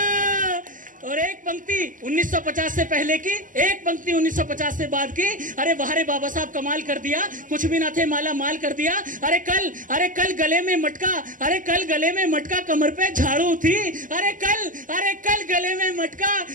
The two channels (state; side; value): late; left; 0.38 ms